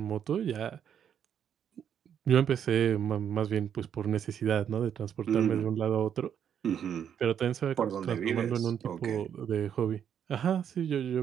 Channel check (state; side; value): quieter; left; 8.7 dB